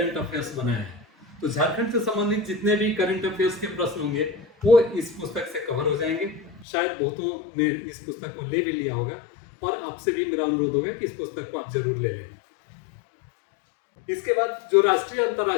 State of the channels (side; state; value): right; drops out; at 6.7 s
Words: अफेयर्स बनाया है। तो झारखंड से संबंधित जितने भी करंट अफेयर्स के प्रश्न होंगे वो इस पुस्तक से कवर हो जाएंगे। शायद बहुतों ने इस पुस्तक को ले भी लिया होगा और आपसे भी मेरा अनुरोध होगा कि इस पुस्तक को आप जरूर ले लें। इसके बाद जो राष्ट्रीय